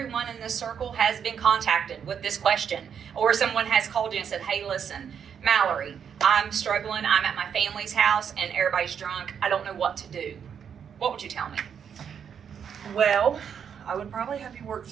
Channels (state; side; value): quieter; left; 7.7 dB